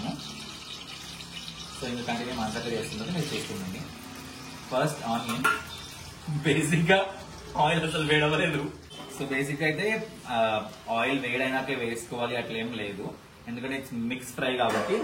సో ఇంకా కంటిన్యూ మాట్లాడి చేస్తున్నది మీరు చేసుకుందండి. ఫస్ట్ ఆనియన్, బేసిక్ గా ఆయిల్ అసలు వేడవలేదు. సో బేసిక్ అయితే ఆయిల్ వేడైనాకే వేసుకోవాలి అట్లా ఏం లేదు, ఎందుకంటే ఇట్స్ మిక్స్ ఫ్రై కాబట్టి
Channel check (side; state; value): both; identical; correlation 1.00